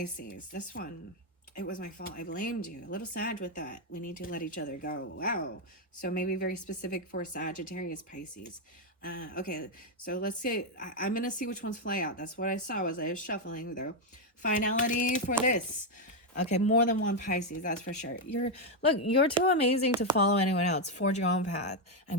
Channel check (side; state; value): both; normal; correlation 0.03